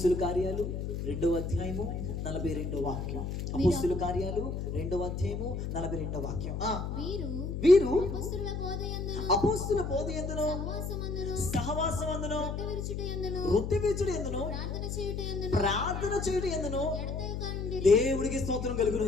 కార్యాలు 2వ అధ్యాయము 42వ వాక్యం. అపోస్తుల కార్యాలు 2వ అధ్యాయము 42వ వాక్యం. వీరు అపోస్తుల బోధయందును సహవాసమందును వృత్తి విరుచుటయందును ప్రార్థన చేయుటయందును దేవుడికి స్తోత్రం కలుగును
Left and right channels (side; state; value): left; noise; hum, 4 dB below the sound